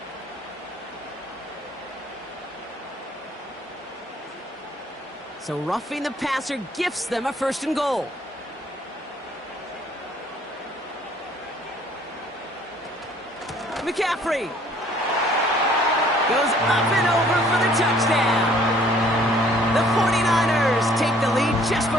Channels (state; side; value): normal; both; correlation 0.58